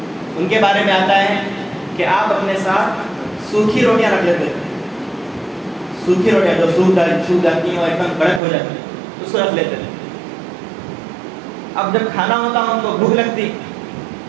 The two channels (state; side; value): drops out; left; at 8.4 s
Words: ان کے بارے میں آتا ہے کہ آپ اپنے ساتھ سوکھی روٹیاں رکھ لیتے تھے، سوکھی روٹیاں جو سوکھ جاتی ہیں اور ایک دم کڑک ہو جاتی ہیں، اس کو رکھ لیتے تھے۔ اب جب کھانا ہوتا ان کو بھوک لگتی